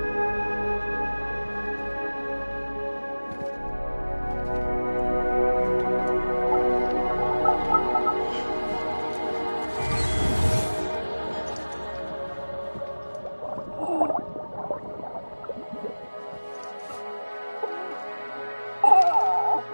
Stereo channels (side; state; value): both; inverted; correlation -1.00